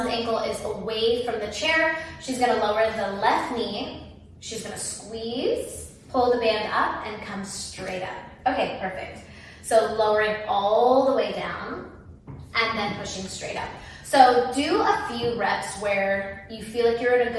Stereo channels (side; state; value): both; identical; correlation 1.00